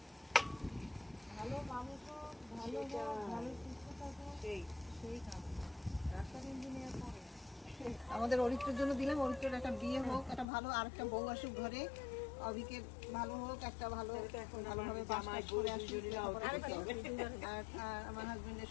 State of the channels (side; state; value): right; drops out; at 10.5 s